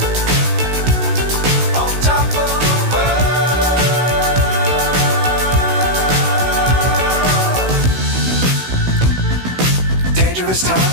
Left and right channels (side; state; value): left; late; 16 ms